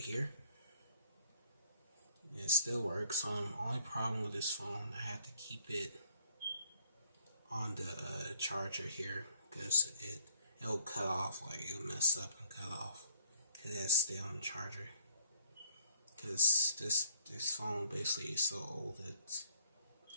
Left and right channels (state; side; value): inverted; both; correlation -0.61